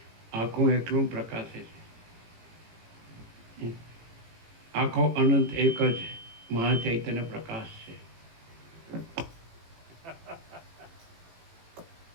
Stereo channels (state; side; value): late; left; 18 ms